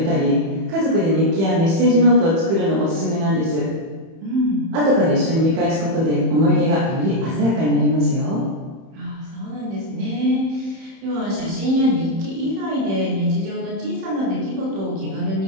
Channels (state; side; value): late; left; 31 ms